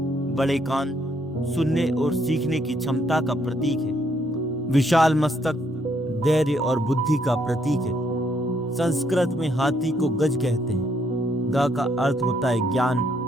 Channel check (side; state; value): both; normal; correlation 0.71